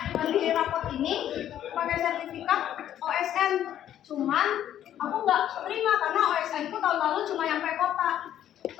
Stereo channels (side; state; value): right; quieter; 11.1 dB